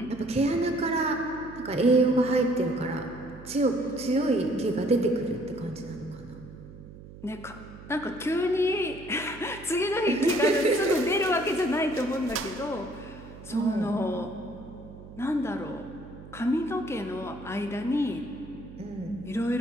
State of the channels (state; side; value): noise; right; hum, 17 dB below the sound